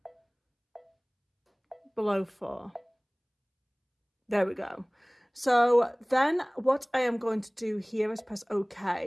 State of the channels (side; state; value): both; identical; correlation 1.00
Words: below 4. There we go. So then what I am going to do here is press